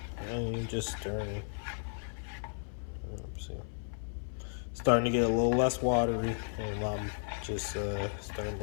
And you just stirring. Oopsie. Starting to get a little less watery, and I'm just starting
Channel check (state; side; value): silent; right; 55 dB below the other